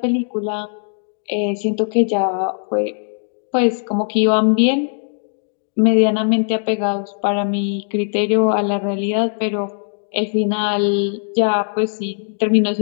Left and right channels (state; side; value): silent; right; digital silence